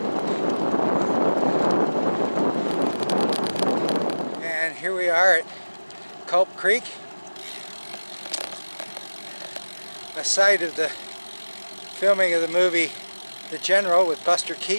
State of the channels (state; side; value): inverted; both; correlation -1.00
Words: Here we are at Culp Creek, a site of the filming of the movie The General with Buster